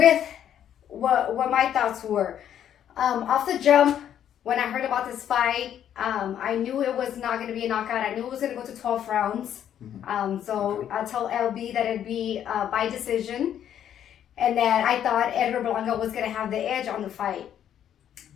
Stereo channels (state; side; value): quieter; right; 10.0 dB